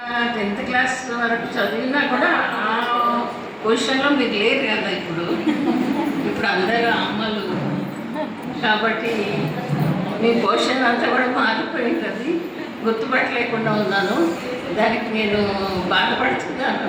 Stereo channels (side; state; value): both; identical; correlation 1.00